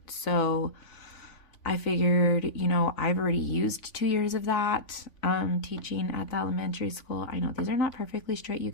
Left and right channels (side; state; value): right; late; 3.5 ms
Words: So I figured, I've already used 2 years of that teaching at the elementary school. I know these are not perfectly straight, you